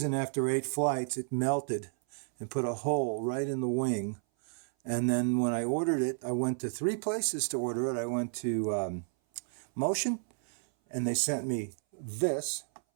after 8 flights it melted and put a hole right in the wing. And then when I ordered it, I went to 3 places to order it. I went to Motion, and they sent me this,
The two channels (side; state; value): left; silent; 57 dB below the other